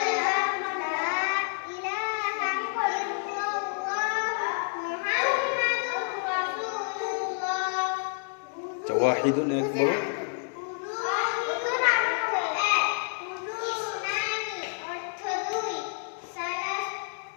ওয়াহিদুন এক বলো।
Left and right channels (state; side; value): silent; right; 59 dB below the other